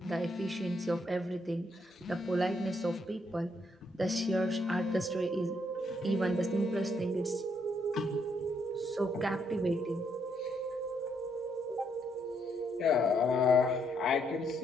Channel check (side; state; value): both; normal; correlation 0.74